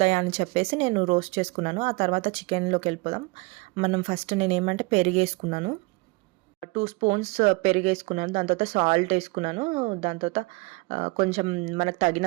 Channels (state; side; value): quieter; left; 26.1 dB